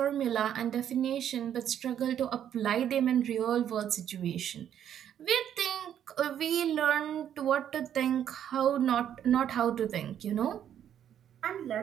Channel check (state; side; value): quieter; left; 9.8 dB